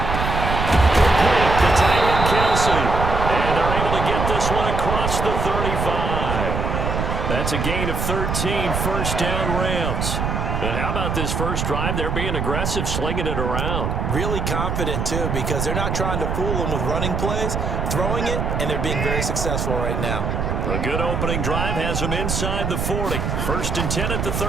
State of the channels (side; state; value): right; noise; rumble, 1 dB below the sound